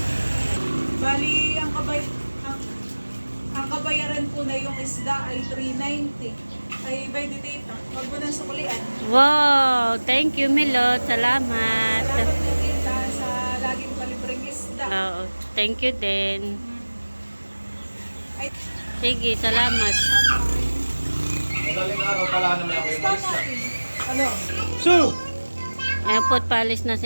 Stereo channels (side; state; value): both; inverted; correlation -1.00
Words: Bali, ang kabayaran po na yung isda ay 390. Ay, by the Tita. Huwag mo nang sukulian. Wow! Thank you, Milot. Salamat. Salamat na Tita sa laging palibreng isda. Oo. Thank you din. Ay, Sige, salamat. Madaling araw pala naman ako yung isda malis na. natin. Ano? So! Ayan po, palis na